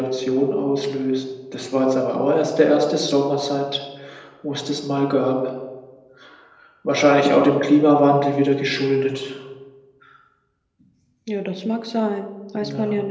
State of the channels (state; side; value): identical; both; correlation 1.00